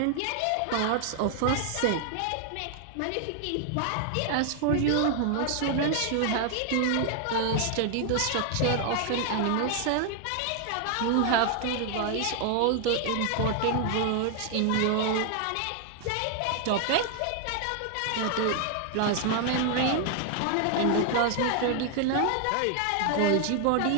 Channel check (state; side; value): different; both; correlation 0.00